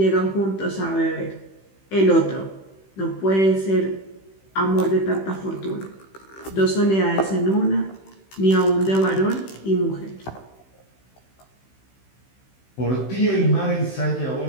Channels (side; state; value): right; late; 15 ms